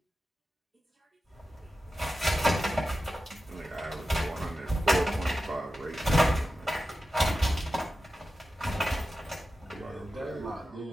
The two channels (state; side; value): normal; both; correlation 0.92